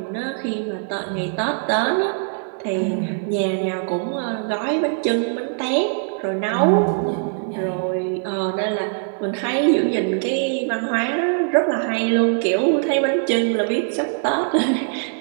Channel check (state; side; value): silent; left; digital silence